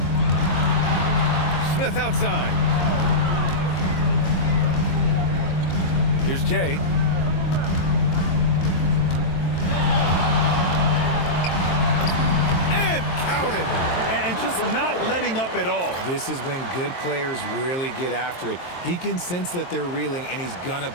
Smith outside. Here's Jay. And counted. And just not letting up at all. This is when good players really get after it. He can sense that they're reeling, and he's gonna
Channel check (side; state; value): right; late; 23 ms